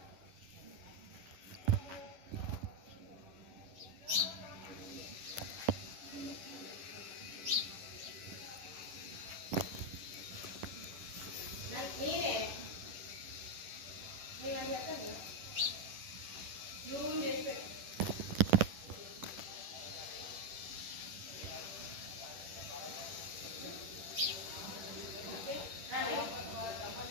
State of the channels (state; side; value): late; left; 10 ms